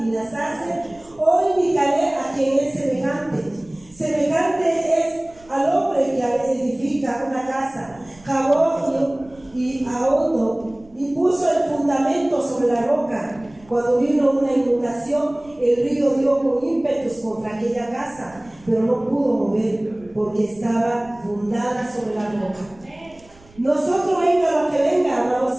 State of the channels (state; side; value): noise; right; rumble, 26 dB below the sound